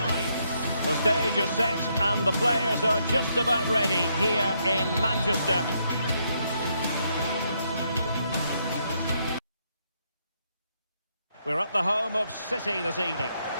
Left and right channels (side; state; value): both; inverted; correlation -0.76